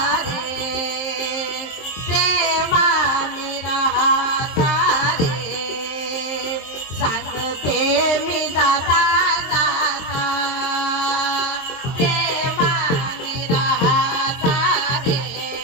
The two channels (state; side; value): late; right; 23 ms